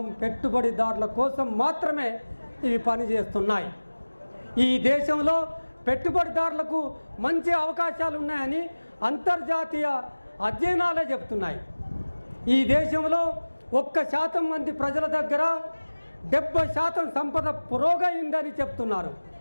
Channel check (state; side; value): inverted; both; correlation -1.00